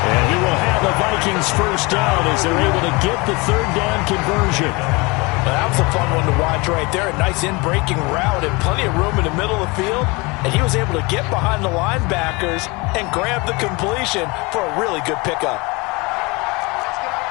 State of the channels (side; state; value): right; quieter; 26.2 dB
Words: And he will have the Vikings first down as they're able to get the third down conversion. That was a fun one to watch right there. A nice in-breaking route and plenty of room in the middle of the field. And he was able to get behind the linebackers and grab the completion for a really good pickup.